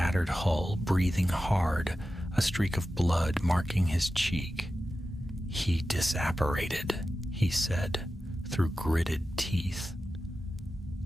hull, breathing hard, a streak of blood marking his cheek. "He disapparated," he said, through gritted teeth.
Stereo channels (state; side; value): normal; both; correlation 0.93